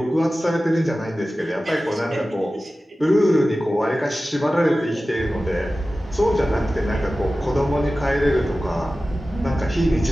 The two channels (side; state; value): both; normal; correlation 0.95